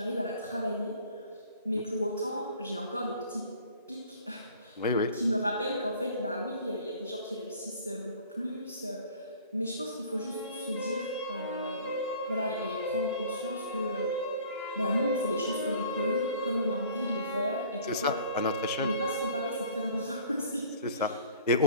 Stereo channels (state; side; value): inverted; both; correlation -0.49